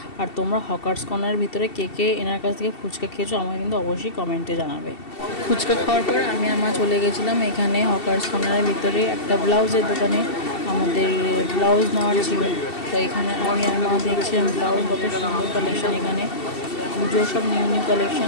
আর তোমরা হকার্স কর্নারের ভিতরে কে কে এনার কাছ থেকে ফুচকা খেয়েছো আমাকে কিন্তু অবশ্যই কমেন্টে জানাবে। ফুচকা খাওয়ার পর আমি আর মা চলে গেছিলাম এখানে হকার্স কর্নারের ভিতরে একটা ব্লাউজের দোকানে। আমাদের ব্লাউজ নেওয়ার ছিল, তো এখানে আমি আর মা দেখছিলাম ব্লাউজ, কত সুন্দর কালেকশন এখানে, পুজোর সব নিউ নিউ কালেকশন।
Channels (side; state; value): right; late; 2.7 ms